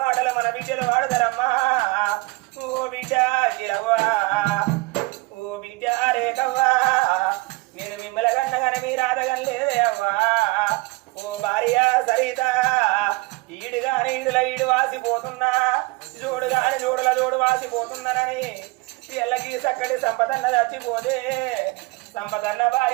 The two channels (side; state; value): left; quieter; 23.7 dB